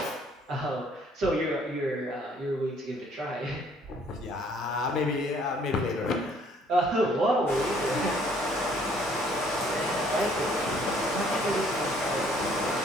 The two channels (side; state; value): both; normal; correlation 0.61